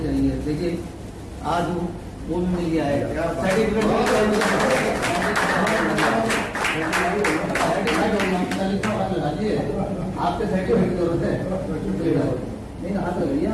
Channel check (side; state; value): both; identical; correlation 1.00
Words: देखिए आज वो मिल गया है आपके सर्टिफिकेट की जरूरत है नहीं ना, हाथ लगाइए